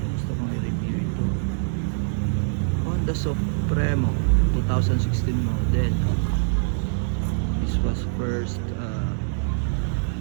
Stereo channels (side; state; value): left; silent; 62 dB below the other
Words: Gusto kong i-review ito. Honda Supremo 2016 model. This was first